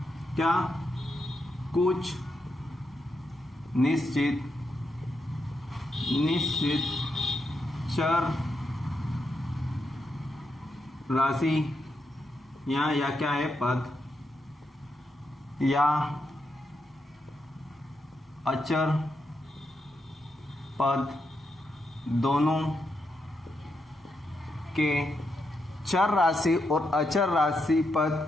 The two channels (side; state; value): both; normal; correlation 0.83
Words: क्या? कुछ निश्चित चर राशि या क्या है? पद या अचर पद, दोनों के चर राशि और अचर राशि पद